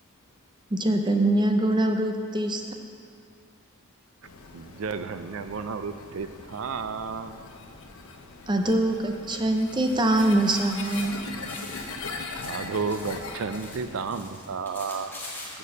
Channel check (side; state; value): both; normal; correlation 0.62